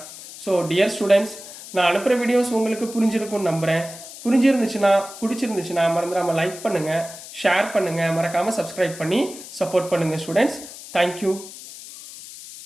ஸோ டியர் ஸ்டூடெண்ட்ஸ், நான் அனுப்புகிற வீடியோஸ் உங்களுக்கு புரிஞ்சிருக்கும்னு நம்புகிறேன். பிடிச்சிருந்துச்சுன்னா மறந்துடாமல் லைக் பண்ணுங்கள், ஷேர் பண்ணுங்கள், மறக்காமல் சப்ஸ்கிரைப் பண்ணி சப்போர்ட் பண்ணுங்கள் ஸ்டூடெண்ட்ஸ். தேங்க்யூ.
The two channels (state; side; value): noise; left; hiss, 14 dB below the sound